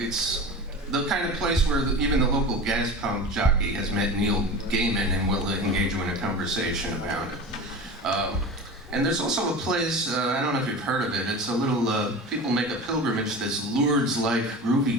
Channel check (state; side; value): normal; both; correlation 0.32